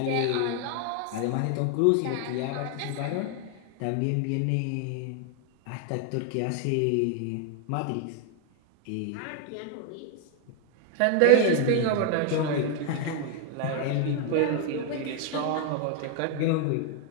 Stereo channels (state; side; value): different; both; correlation 0.00